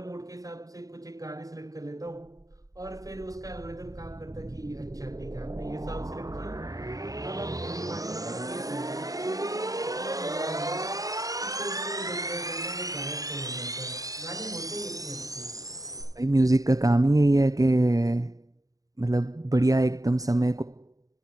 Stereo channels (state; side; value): late; left; 0.17 ms